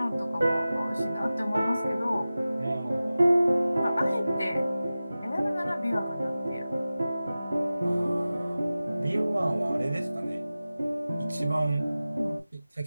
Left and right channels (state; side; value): inverted; both; correlation -0.96